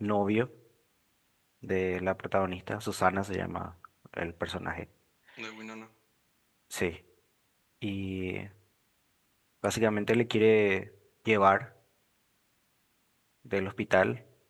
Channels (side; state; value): both; identical; correlation 1.00